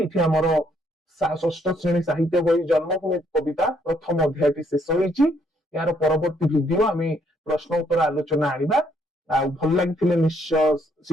ଏଠି ଆମର ଷଷ୍ଠ ଶ୍ରେଣୀ ସାହିତ୍ୟ ବହି ଜନ୍ମଭୂମି କବିତା ପ୍ରଥମ ଅଧ୍ୟାୟଟି ଶେଷ ହେଇଛି। ଏହାର ପରବର୍ତ୍ତୀ ଭିଡିଓ ଆମେ ପ୍ରଶ୍ନ ଉତ୍ତର ଆଲୋଚନା ଆଣିବା। ଆଉ ଭଲ ଲାଗିଥିଲେ ନିଶ୍ଚୟ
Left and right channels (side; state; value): both; normal; correlation 0.69